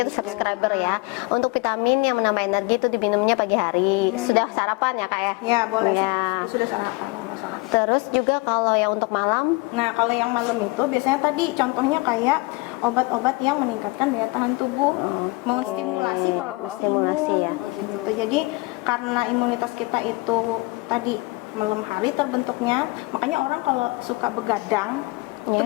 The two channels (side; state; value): right; quieter; 25.1 dB